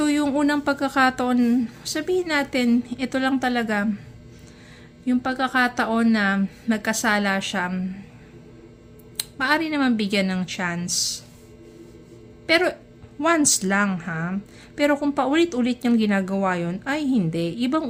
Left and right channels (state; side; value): identical; both; correlation 1.00